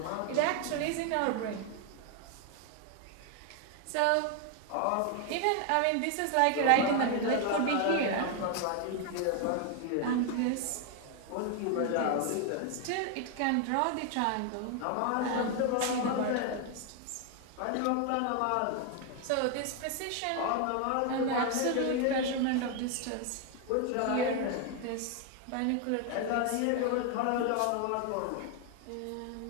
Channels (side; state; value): both; different; correlation 0.01